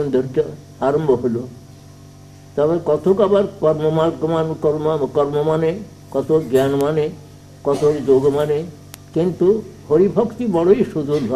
আরম্ভ হলো। তবে কতক আবার কর্ম মানে, কত জ্ঞান মানে, কত যোগ মানে, কিন্তু হরিভক্তি বড়ই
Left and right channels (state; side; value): identical; both; correlation 1.00